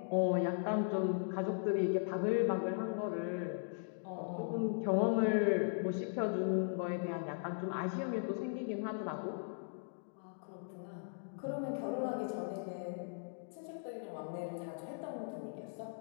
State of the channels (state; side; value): silent; right; digital silence